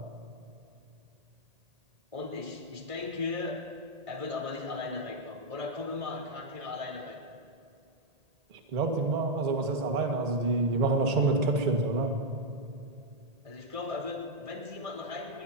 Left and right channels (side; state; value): left; late; 1.8 ms